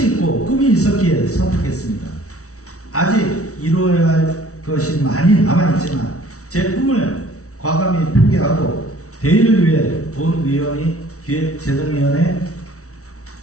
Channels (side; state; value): right; late; 0.64 ms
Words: 있고 꿈이 있었기에 선택했습니다. 아직 이루어야 할 것이 많이 남아있지만 제 꿈을 과감히 포기하고 대의를 위해 본 의원이 기획재정위원회